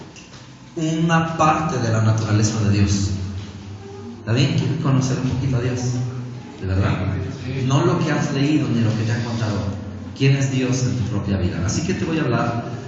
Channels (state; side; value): identical; both; correlation 1.00